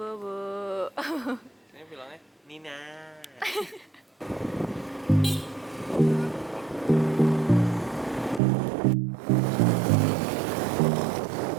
Ini bilangnya Nina.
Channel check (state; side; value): drops out; left; at 8.4 s